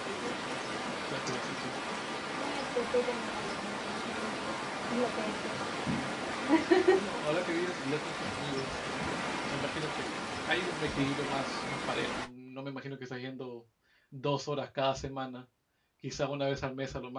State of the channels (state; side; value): identical; both; correlation 1.00